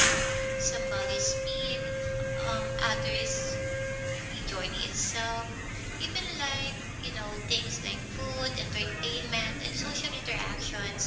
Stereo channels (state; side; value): identical; both; correlation 1.00